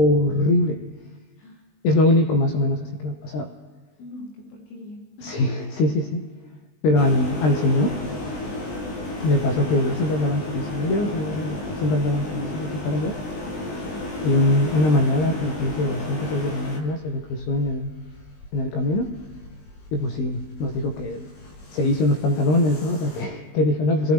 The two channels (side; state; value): right; late; 20 ms